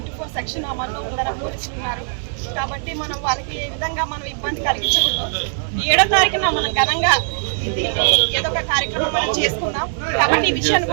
సెక్షన్ అమల్లో ఉందన్న పోలీసులు ఉన్నారు. కాబట్టి మనం వాళ్ళకి ఏ విధంగా మనం ఇబ్బంది కలిగించకూడదు. 7వ తారీఖున మనం ఘనంగా దీన్ని ఏదో ఒక కార్యక్రమం మనం చేసుకుందాం. కాబట్టి ఈ విషయాన్ని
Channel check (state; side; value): silent; left; digital silence